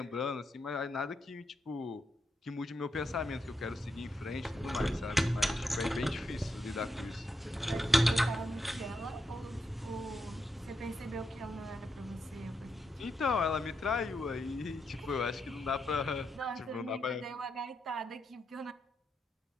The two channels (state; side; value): normal; both; correlation 0.83